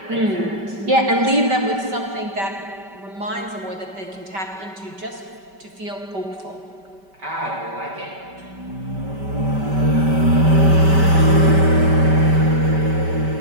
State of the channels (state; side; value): late; left; 5.2 ms